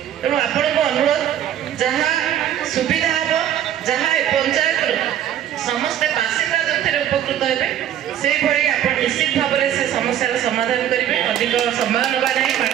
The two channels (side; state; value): left; quieter; 10.7 dB